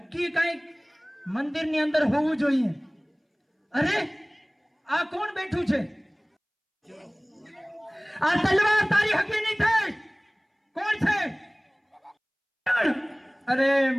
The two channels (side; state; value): both; identical; correlation 1.00